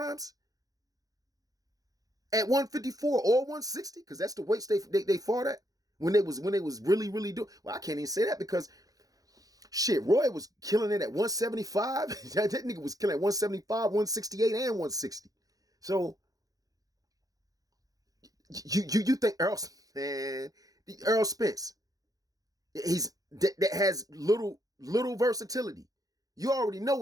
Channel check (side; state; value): left; late; 0.17 ms